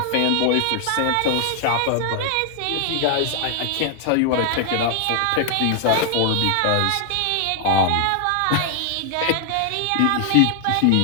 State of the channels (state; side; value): different; both; correlation 0.00